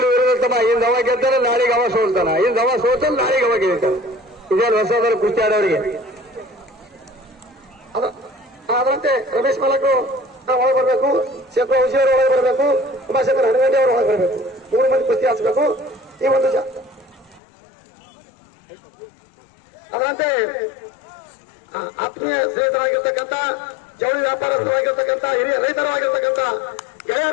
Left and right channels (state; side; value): drops out; right; at 17.4 s